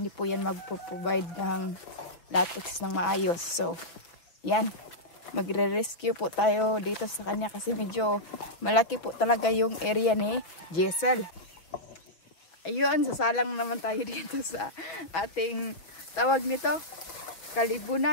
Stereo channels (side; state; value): right; late; 5.9 ms